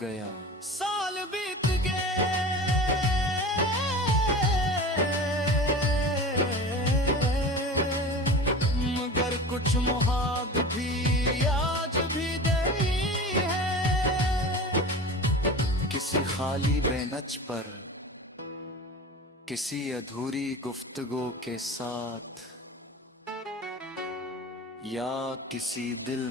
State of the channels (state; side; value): normal; both; correlation 0.34